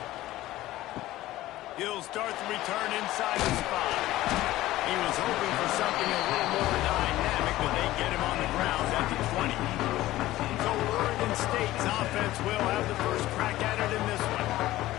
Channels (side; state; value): right; quieter; 16.1 dB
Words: He'll start the return inside the spot. He was hoping for something a little more dynamic, but they get him on the ground at the 20. So Oregon State's offense will have the first crack at it in this one.